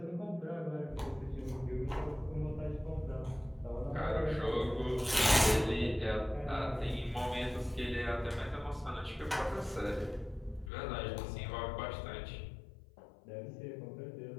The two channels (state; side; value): drops out; right; at 10.7 s